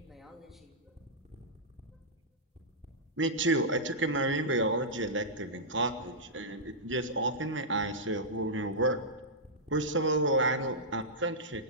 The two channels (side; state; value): both; normal; correlation -0.11